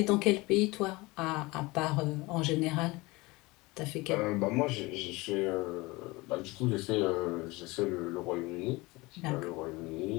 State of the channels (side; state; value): right; quieter; 22.9 dB